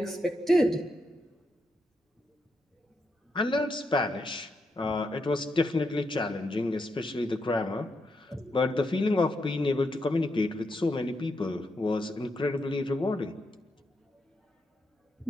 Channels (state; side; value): normal; both; correlation 0.82